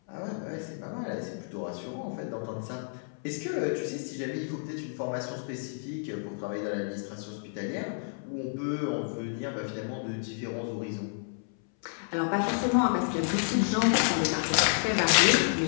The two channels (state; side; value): silent; right; 58 dB below the other